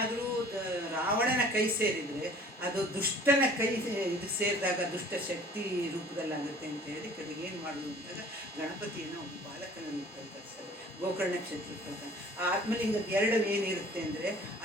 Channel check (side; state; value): both; normal; correlation 0.50